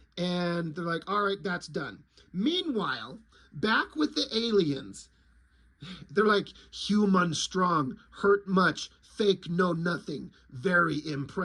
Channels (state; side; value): identical; both; correlation 1.00